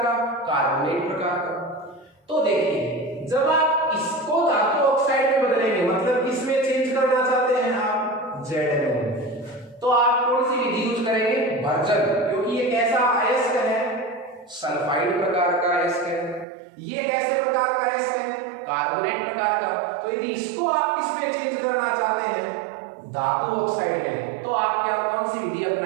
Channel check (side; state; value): left; drops out; at 16.4 s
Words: का, कार्बोनेट प्रकार का। तो देखिए जब आप इसको धातु ऑक्साइड में बदलेंगे, मतलब किसमें चेंज करना चाहते हैं आप, ZnO, तो आप कौन सी विधि यूज करेंगे, भर्जन, क्योंकि ये कैसा अयस्क है, सल्फाइड प्रकार का अयस्क है। ये कैसे प्रकार का अयस्क है, कार्बोनेट प्रकार का। तो यदि इसको आप किसमें चेंज करना चाहते हैं, धातु ऑक्साइड में, तो आप क्या कौन सी विधि